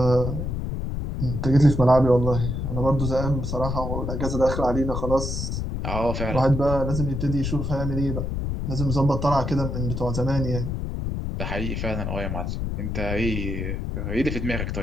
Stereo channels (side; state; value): left; noise; rumble, 3 dB below the sound